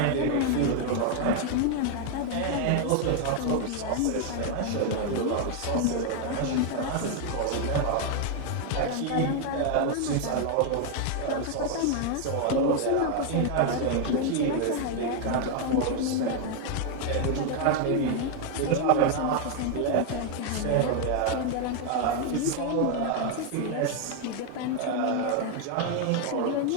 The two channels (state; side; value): different; both; correlation 0.01